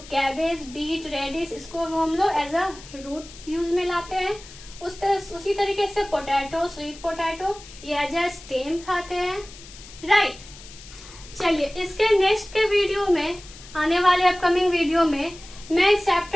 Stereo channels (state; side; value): noise; left; hiss, 18 dB below the sound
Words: कैबेज, बीट, रेडिश, इसको हम लोग एज अ रूट यूज में लाते हैं। उसी तरीके से पोटैटो, स्वीट पोटैटो, ये एज अ स्टेम खाते हैं, राइट। चलिए इसके नेक्स्ट के वीडियो में, आने वाले अपकमिंग वीडियो में, मैं इस